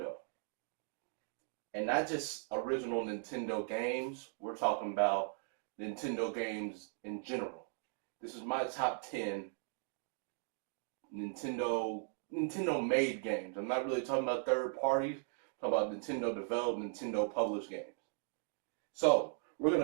And not just original Nintendo games, we're talking about Nintendo games in general. This is my top 10 Nintendo made games. I'm not really talking about third parties. I'm talking about Nintendo developed, Nintendo published games. So we're going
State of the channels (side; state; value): left; silent; 52 dB below the other